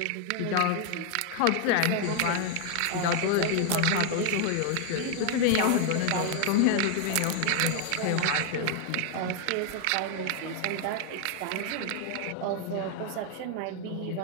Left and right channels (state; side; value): different; both; correlation 0.00